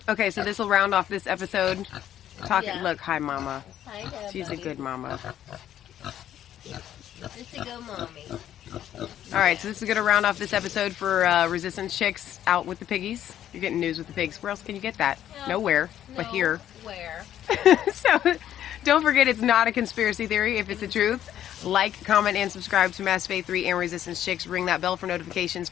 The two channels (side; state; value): right; quieter; 11.2 dB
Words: Okay, so this will round off this episode. Yeah. Look, hi, Mama. Hi, Dad, She's buddy. a good mama. It's a good mommy. All right, so this is going to round off this episode for Resistance Chicks out with the piggies. You're getting news with the pigs. Where else can you get that? Nowhere, but here. Where? So don't forget, it's not a conspiracy theory if it's the truth. Like, comment, and subscribe to Mass Faith 3 and Resistance Chicks. Ring that bell for notifications.